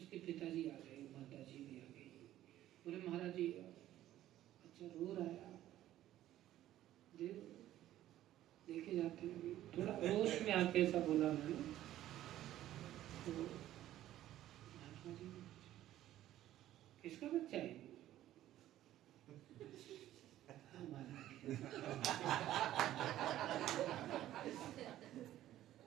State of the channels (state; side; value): quieter; left; 13.4 dB